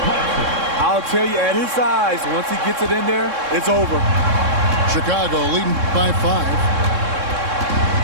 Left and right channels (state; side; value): late; left; 3.7 ms